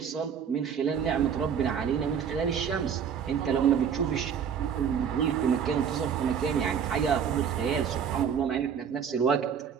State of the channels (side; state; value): left; quieter; 7.6 dB